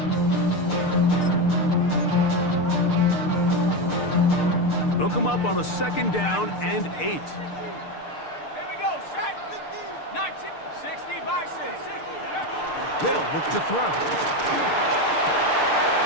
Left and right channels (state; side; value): late; right; 6.7 ms